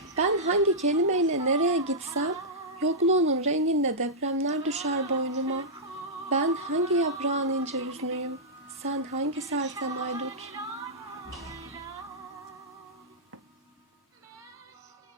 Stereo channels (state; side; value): normal; both; correlation -0.11